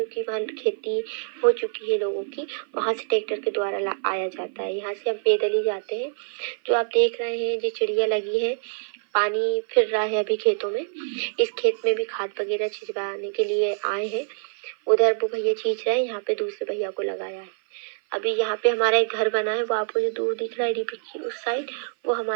वहाँ खेती हो चुकी है लोगों की। वहाँ से ट्रैक्टर के द्वारा आया जाता है, यहाँ से हम पैदल ही जाते हैं। जो आप देख रहे हैं जो चिड़िया लगी है, पानी फिर रहा है अभी खेतों में। इस खेत में भी खाद वगैरह छिड़काने के लिए आए हैं। उधर वो भैया छींच रहे हैं, यहाँ पे दूसरे भैया को लगाया है। अभी यहाँ पे हमारा एक घर बना है, वो आपको जो दूर दिख रहा है डीपी की उस साइड, वो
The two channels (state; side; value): silent; left; 56 dB below the other